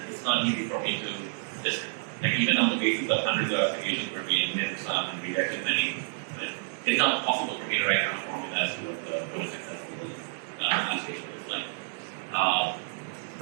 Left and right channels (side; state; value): left; silent; 58 dB below the other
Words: it's not easy for me to just, even on the basis of hundreds of applications where we admit some and rejected many, it's not possible for me to write down a formula as to what a successful application looks like.